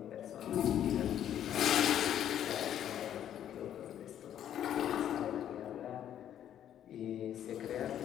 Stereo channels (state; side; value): quieter; right; 10.5 dB